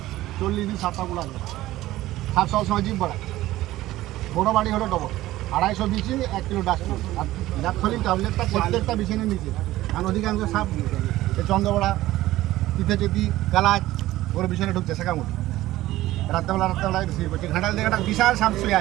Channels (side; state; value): left; quieter; 16.0 dB